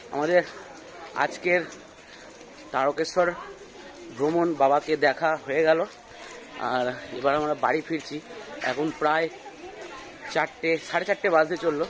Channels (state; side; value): identical; both; correlation 1.00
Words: আমাদের আজকের তারকেশ্বর ভ্রমণ বাবাকে দেখা হয়ে গেল, আর এবার আমরা বাড়ি ফিরছি। এখন প্রায় 4টে, 4:30 বাজতে চললো।